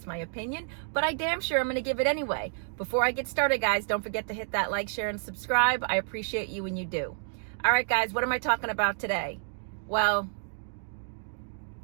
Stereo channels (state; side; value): silent; left; digital silence